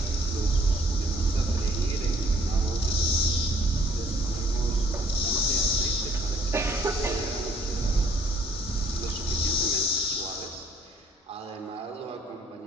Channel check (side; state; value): both; normal; correlation 0.62